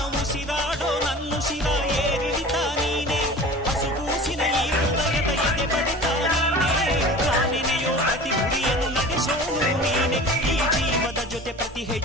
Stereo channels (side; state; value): both; normal; correlation 0.39